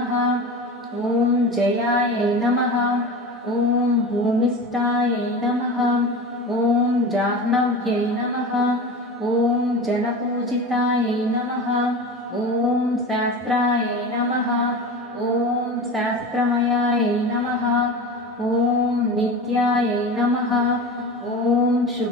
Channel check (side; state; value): both; normal; correlation 0.30